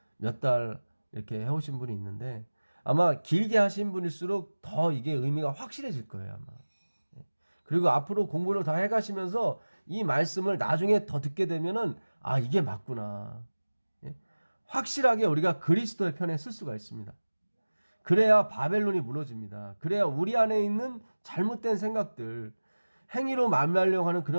몇 달 이렇게 해오신 분이 있는데 아마 길게 하신 분일수록 더 이게 의미가 확실해질 거예요, 아마. 그리고 앞으로 공부를 더 해가시면서 이 말씀을 나중에 더 듣게 되면은 이게 맞구나. 확실하게 우리가 그리스도의 편에 쓸 수가 있습니다. 그래야 바벨론이 무너집니다. 그래야 우리 안에 있는 잘못된 생각들, 행위로 만나려고 하는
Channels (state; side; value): inverted; both; correlation -1.00